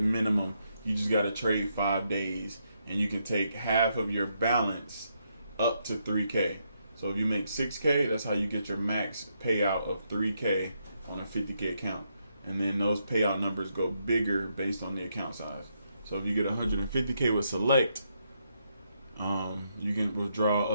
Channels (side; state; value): both; inverted; correlation -0.78